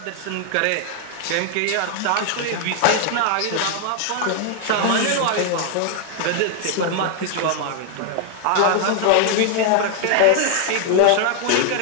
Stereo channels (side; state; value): both; different; correlation 0.00